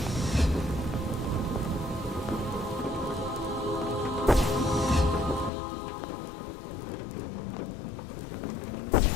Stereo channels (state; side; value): drops out; right; at 5.5 s